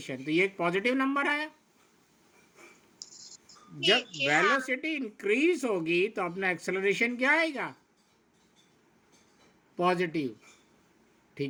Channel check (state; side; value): identical; both; correlation 1.00